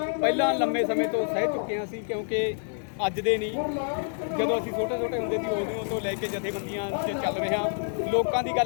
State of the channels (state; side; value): silent; right; digital silence